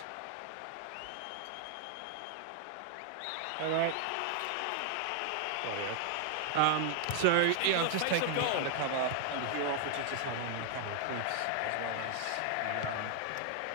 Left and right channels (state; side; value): different; both; correlation 0.00